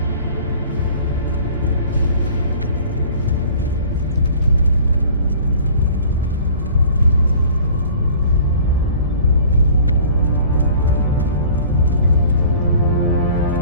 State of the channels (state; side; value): inverted; both; correlation -0.49